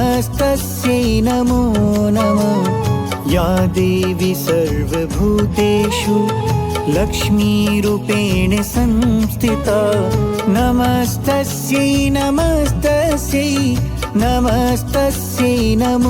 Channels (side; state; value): both; identical; correlation 1.00